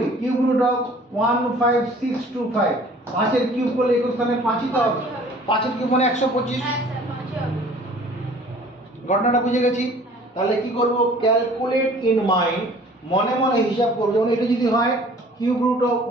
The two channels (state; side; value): normal; both; correlation 0.51